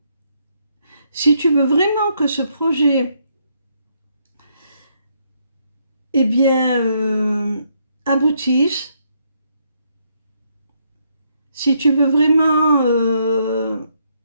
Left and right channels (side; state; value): both; inverted; correlation -0.74